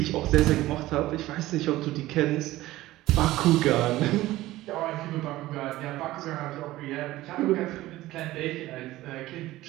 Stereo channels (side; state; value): left; quieter; 16.7 dB